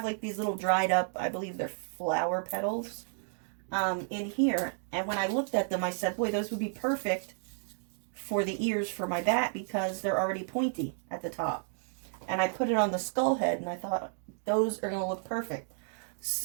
like these little dried up, I believe they're flower petals, in here. And when I looked at them, I said, boy, those would be perfect for the ears for my bat because they're already pointy at the top. And I put it on the skull head, and I thought those are going to look perfect.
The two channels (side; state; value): left; silent; digital silence